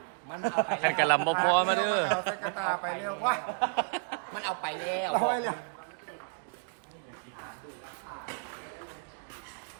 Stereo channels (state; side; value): silent; left; digital silence